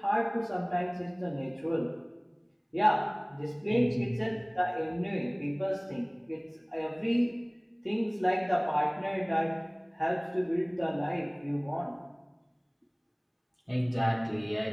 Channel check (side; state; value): both; identical; correlation 1.00